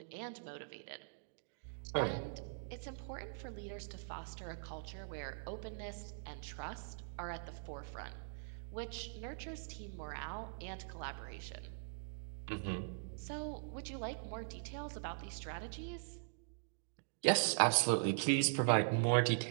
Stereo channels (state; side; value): silent; left; digital silence